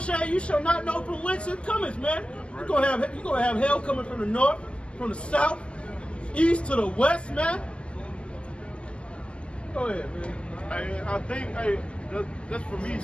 shall you shall not know from whence it cometh, man. You're gonna have hell coming from the north, from the south, east to the west, man. Go ahead, man. Hey, I think, that's for me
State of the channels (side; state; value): right; late; 0.053 ms